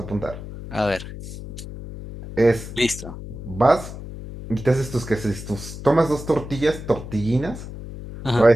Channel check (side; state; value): left; noise; hum, 11 dB below the sound